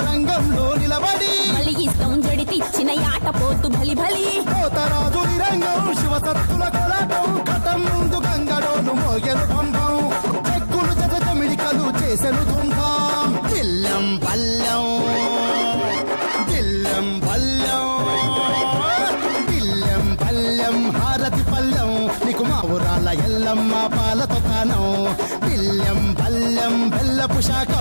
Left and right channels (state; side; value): inverted; both; correlation -1.00